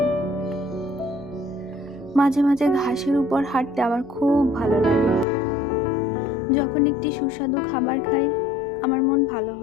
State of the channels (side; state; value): right; drops out; at 5.2 s